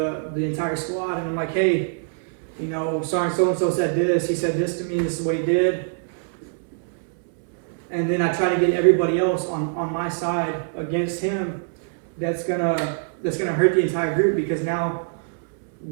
the entire squad and I'm like, hey, Sergeant so-and-so said this, he said this to me, this is what he did. And then I try to get everybody else on my side against him. That's gonna hurt the entire group, because now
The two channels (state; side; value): silent; left; 63 dB below the other